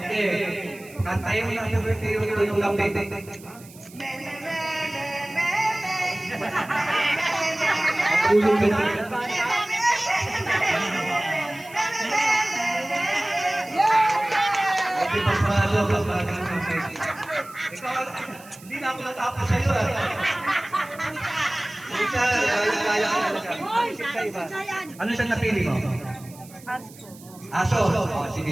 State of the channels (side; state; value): right; noise; hiss, 21 dB below the sound